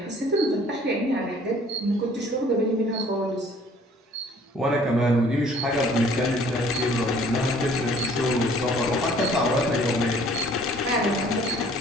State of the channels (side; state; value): both; normal; correlation 0.55